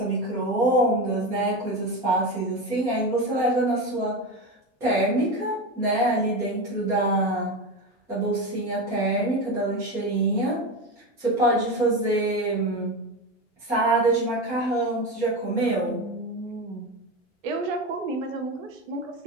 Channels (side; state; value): both; normal; correlation 0.19